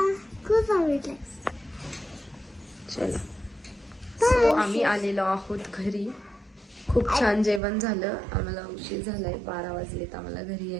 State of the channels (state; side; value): drops out; left; at 7.6 s